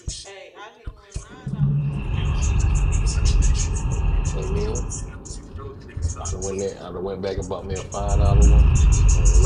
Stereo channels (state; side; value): identical; both; correlation 1.00